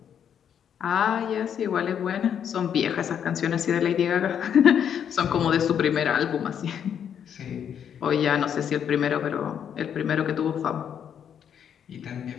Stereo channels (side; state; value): right; quieter; 8.5 dB